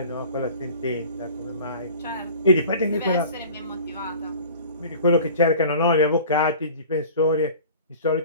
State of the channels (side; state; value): both; inverted; correlation -0.42